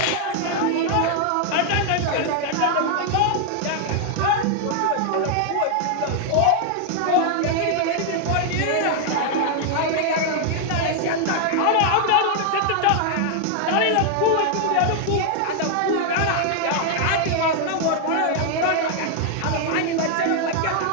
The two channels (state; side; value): different; both; correlation 0.00